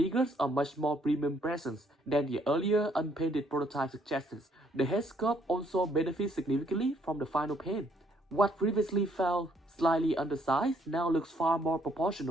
a much more premium presence than the earlier unpainted prototype suggested. The head sculpt also benefits significantly from the final paint. What previously felt slightly undersized now looks far more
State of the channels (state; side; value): normal; both; correlation 0.68